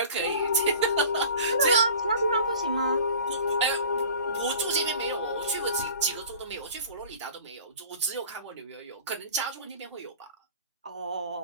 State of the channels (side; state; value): both; inverted; correlation -0.43